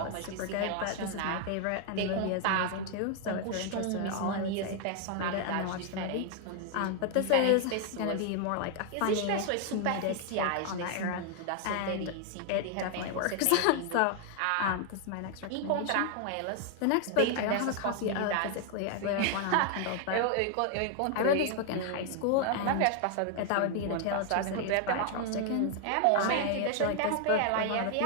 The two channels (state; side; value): different; both; correlation 0.00